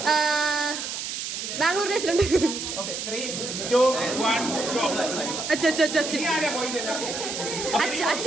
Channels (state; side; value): noise; right; hiss, 5 dB below the sound